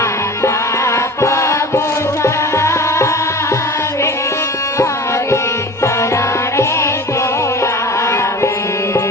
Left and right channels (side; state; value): both; normal; correlation 0.37